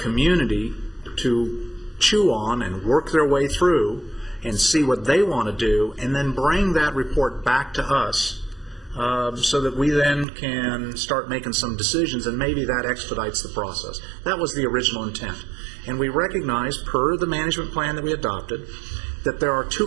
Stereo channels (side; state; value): left; drops out; at 10.2 s